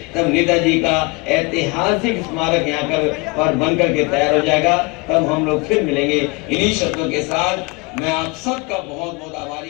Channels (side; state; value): right; quieter; 28.2 dB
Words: तब नेताजी का ऐतिहासिक स्मारक यहाँ पर बन करके तैयार हो जाएगा, तब हम लोग फिर मिलेंगे। इन्हीं शब्दों के साथ मैं आप सबका बहुत बहुत